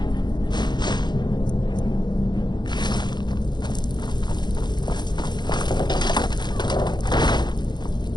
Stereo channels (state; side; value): late; right; 0.21 ms